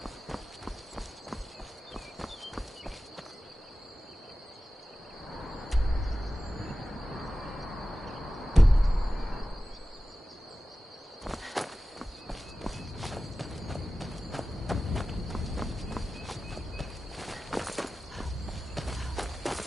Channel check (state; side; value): normal; both; correlation 0.95